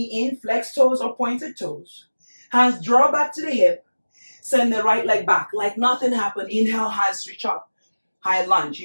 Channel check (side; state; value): both; inverted; correlation -1.00